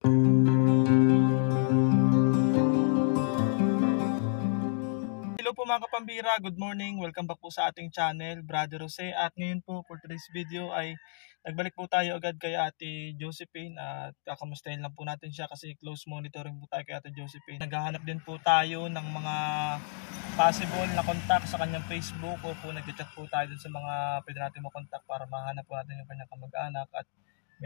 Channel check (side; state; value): right; silent; digital silence